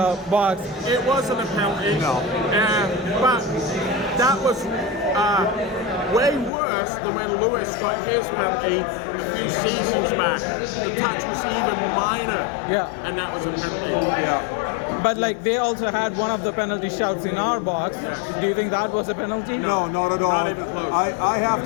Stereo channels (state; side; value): drops out; right; at 6.5 s